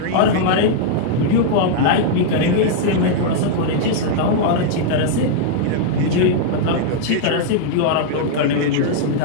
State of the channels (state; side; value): different; both; correlation -0.01